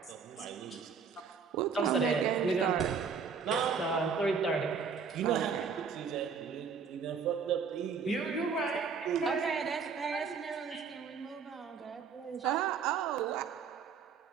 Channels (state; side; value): quieter; left; 5.9 dB